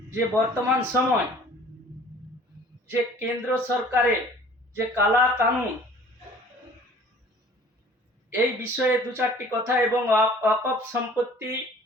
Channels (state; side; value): normal; both; correlation 0.50